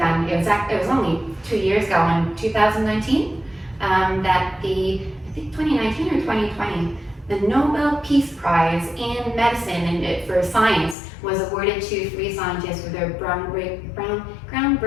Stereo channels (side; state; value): right; drops out; at 11.0 s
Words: It was only 2 years ago in 2019 that I think 2019 or 2020, the Nobel Peace Prize in medicine and for science was awarded to 3 scientists for their